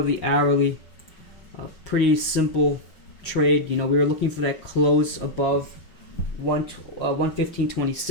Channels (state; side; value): late; right; 5.3 ms